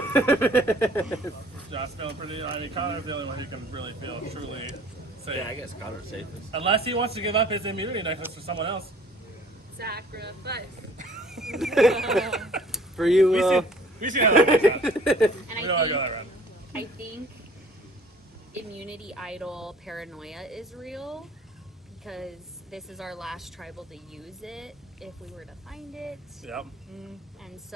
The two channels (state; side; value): normal; both; correlation 0.53